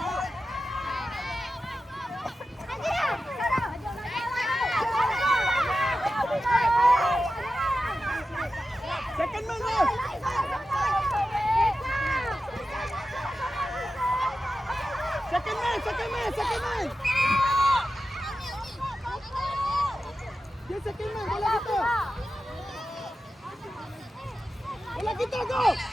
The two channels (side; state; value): both; normal; correlation 0.92